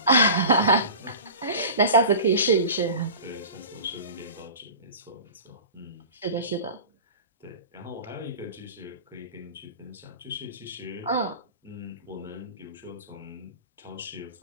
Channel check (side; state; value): both; inverted; correlation -0.35